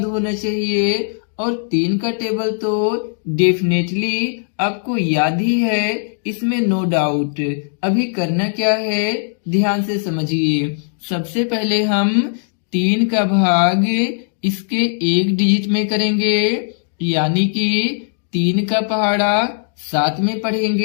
होना चाहिए। और 3 का टेबल तो डेफिनेटली आपको याद ही है, इसमें नो डाउट। अभी करना क्या है, ध्यान से समझिए। सबसे पहले हम 3 का भाग इसके 1 डिजिट में करेंगे, यानी कि 3 का पहाड़ा 7 में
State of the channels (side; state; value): right; silent; digital silence